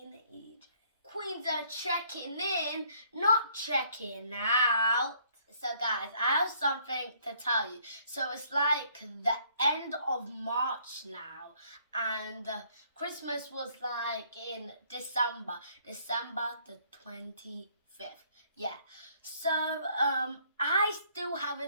EJ. Queens are checking in, not checking out. So, guys, I have something to tell you. So, it's like the end of March now, and Christmas was like in December the 25th. Yeah. So, I still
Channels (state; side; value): inverted; both; correlation -0.64